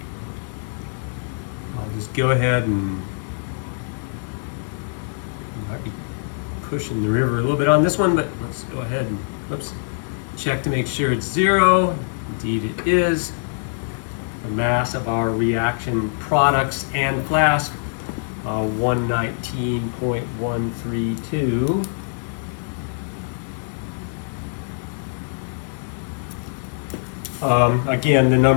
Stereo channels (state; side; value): silent; right; digital silence